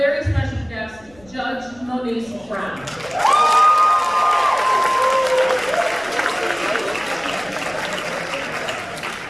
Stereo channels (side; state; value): left; noise; rumble, 26 dB below the sound